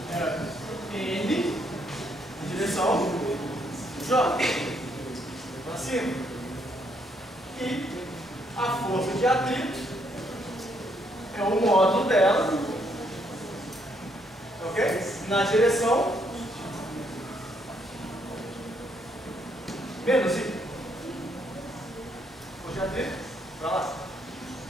é N na direção J. Para cima. E a força de atrito é o módulo dela, ok? Na direção menos I. Força de atrito para lá.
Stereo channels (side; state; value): both; normal; correlation 0.72